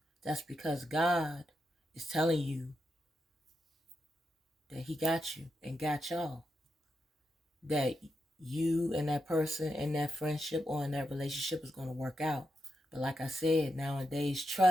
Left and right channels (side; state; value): both; normal; correlation 0.85